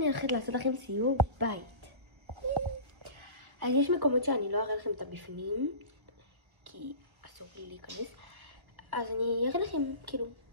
הולכת לעשות לכם סיור בית. אז יש מקומות שאני לא אראה לכם את הבפנים, כי אסור לי להיכנס. אז אני אראה לכם, כאילו,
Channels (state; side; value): late; left; 1.4 ms